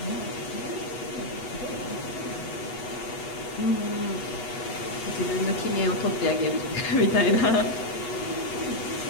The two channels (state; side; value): late; right; 8.2 ms